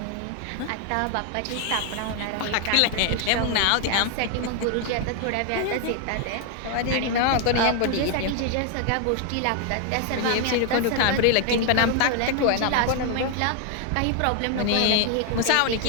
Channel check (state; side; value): different; both; correlation 0.00